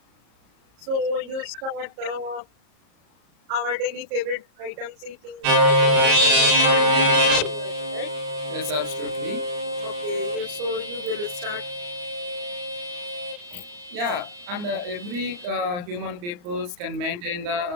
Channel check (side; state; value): left; late; 34 ms